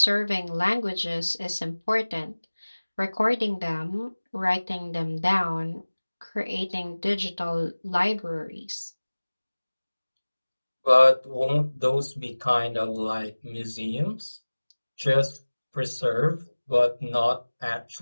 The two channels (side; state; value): both; inverted; correlation -1.00